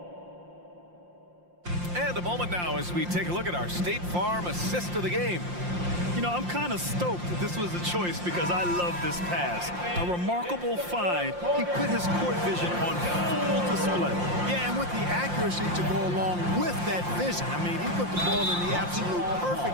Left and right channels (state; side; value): late; left; 5.7 ms